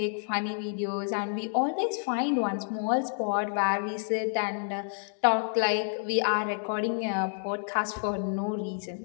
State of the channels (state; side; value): silent; right; digital silence